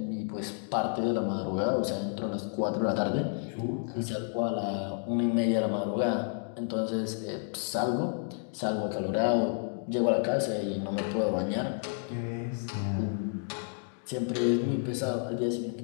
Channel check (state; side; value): silent; right; 56 dB below the other